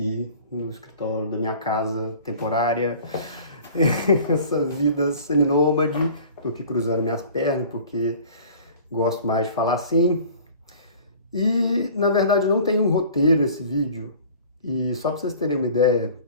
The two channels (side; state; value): both; inverted; correlation -0.46